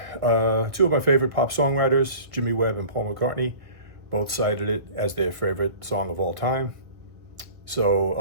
Two of my favorite pop songwriters, Jimmy Webb and Paul McCartney, both cited it as their favorite song of all time. So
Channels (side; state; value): left; late; 1.5 ms